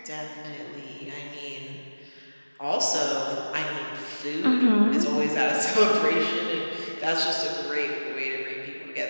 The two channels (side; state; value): both; inverted; correlation -1.00